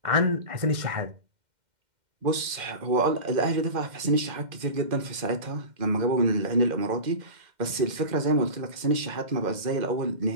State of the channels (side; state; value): left; late; 2.1 ms